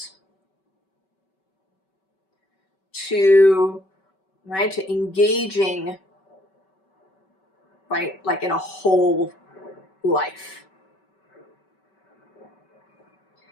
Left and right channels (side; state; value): right; late; 5.2 ms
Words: To engaging, right, like in a whole life.